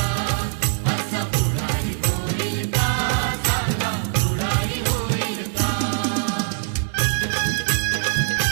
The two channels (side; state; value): left; silent; digital silence